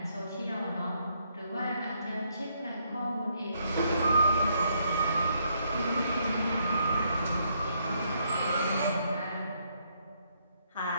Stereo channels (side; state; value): both; inverted; correlation -0.73